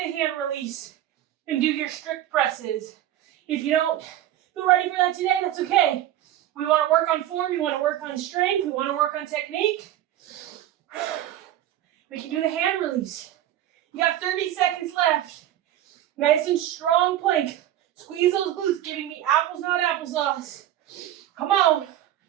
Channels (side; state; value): left; quieter; 12.6 dB